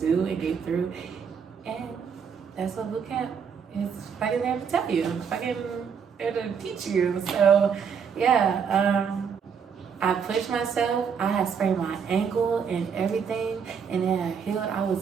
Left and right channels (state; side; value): quieter; left; 6.7 dB